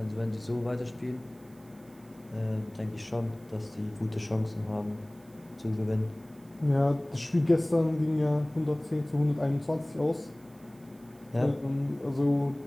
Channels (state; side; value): noise; right; hiss, 29 dB below the sound